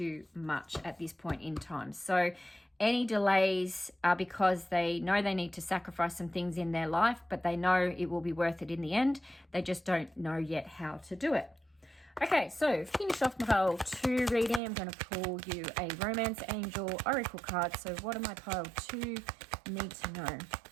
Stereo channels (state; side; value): drops out; left; at 14.6 s